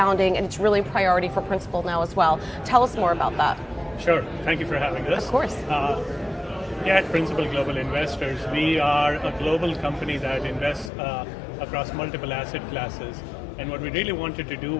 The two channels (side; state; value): right; drops out; at 10.9 s